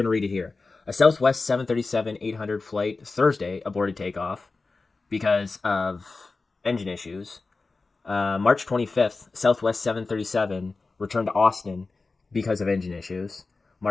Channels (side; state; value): right; quieter; 3.8 dB